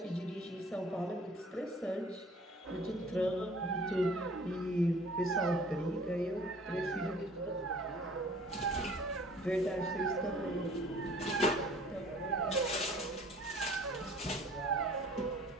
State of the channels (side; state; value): both; normal; correlation 0.51